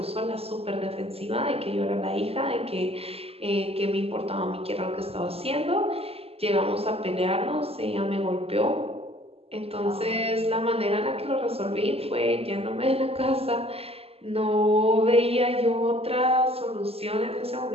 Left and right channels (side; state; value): left; late; 0.29 ms